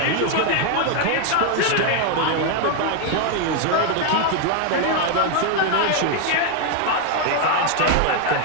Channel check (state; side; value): different; both; correlation 0.01